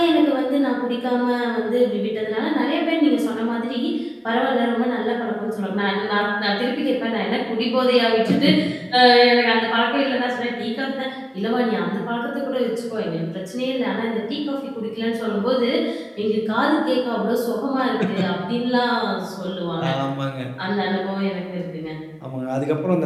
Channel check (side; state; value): both; identical; correlation 1.00